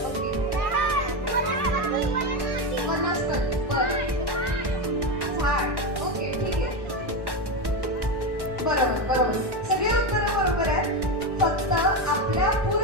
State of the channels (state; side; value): late; left; 1.1 ms